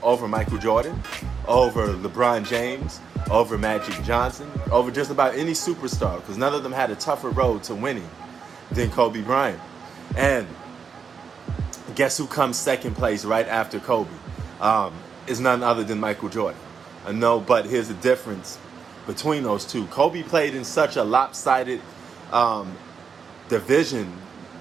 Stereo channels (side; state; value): left; quieter; 6.1 dB